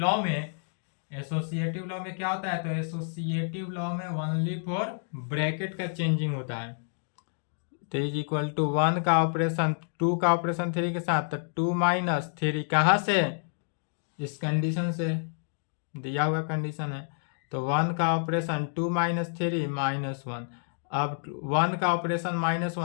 में क्या होता है, तो एसोसिएटिव लॉ में ओनली फॉर ब्रैकेट का चेंजिंग होता है। तो इज इक्वल टू 1 का ऑपरेशन 2 का ऑपरेशन 3 के साथ, तो 2 माइनस 3 कहाँ से, इस कंडीशन से, दिया हुआ कंडीशन है। तो 1 का ऑपरेशन 2 माइनस 3 -1, अब 1 का ऑपरेशन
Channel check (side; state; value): right; silent; digital silence